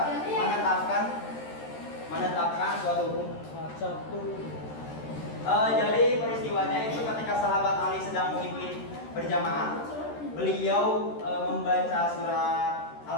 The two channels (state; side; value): late; right; 13 ms